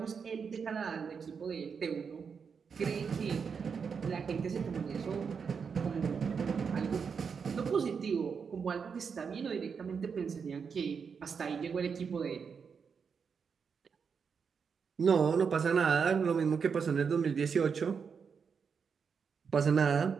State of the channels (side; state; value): left; quieter; 6.1 dB